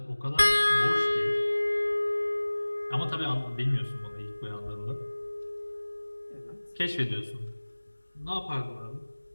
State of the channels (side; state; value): both; inverted; correlation -1.00